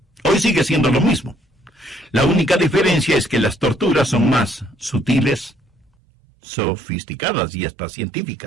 Hoy sigue siendo lo mismo. La única diferencia es que las torturas son más sutiles, sofisticadas y hasta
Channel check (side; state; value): left; drops out; at 5.9 s